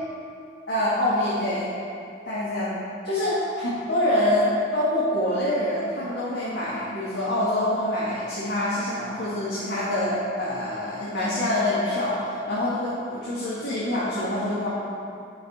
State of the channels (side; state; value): both; normal; correlation 0.08